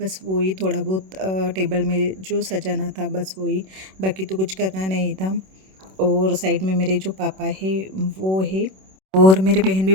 वही थोड़ा बहुत टेबल में जो सजाना था बस वही, बाकी तो कुछ करना नहीं था। और साइड में मेरे जो पापा है वो है। और मेरी बहन भी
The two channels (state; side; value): late; left; 26 ms